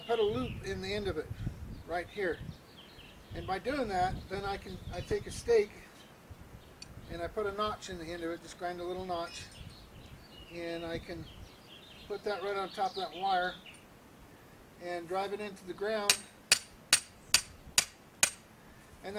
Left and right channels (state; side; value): identical; both; correlation 1.00